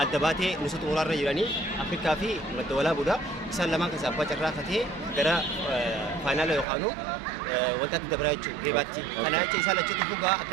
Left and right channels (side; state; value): left; drops out; at 6.7 s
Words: الدباتة نسوت تمورا رجلاني أفريقيا في مدولا بودا إنسان لما كسب بجرا فتة غير فاينل يخانو وقت دبرايتشو جيباتي أنا أشي سالة شو تفوقا